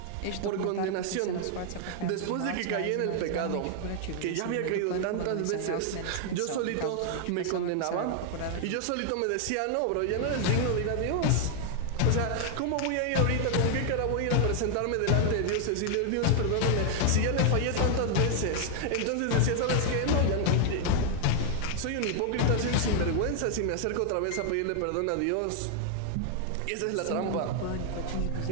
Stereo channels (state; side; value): different; both; correlation 0.00